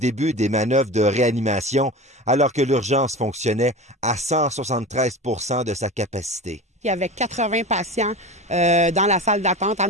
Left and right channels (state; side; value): normal; both; correlation 0.30